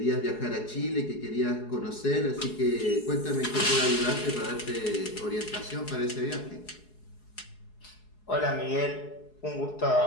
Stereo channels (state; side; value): late; right; 4.7 ms